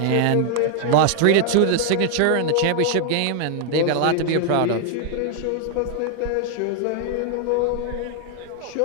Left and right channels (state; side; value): different; both; correlation 0.00